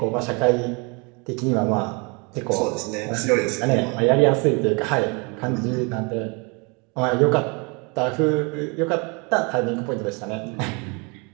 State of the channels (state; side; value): quieter; left; 31.1 dB